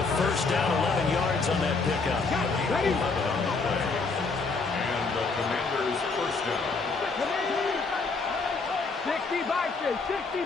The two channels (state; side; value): quieter; right; 4.2 dB